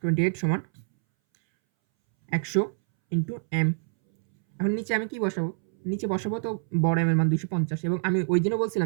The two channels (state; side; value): silent; left; 61 dB below the other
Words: 28 সমান 100 ইন্টু এম। এখন নিচে আমি কি বসাবো? নিচে বসাবো তো বড় এম এর মান 250, এবং আমি ওই দিনও